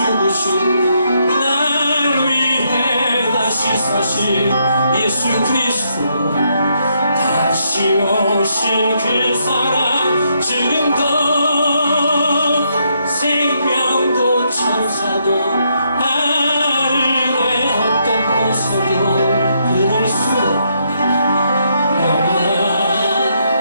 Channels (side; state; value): both; inverted; correlation -0.76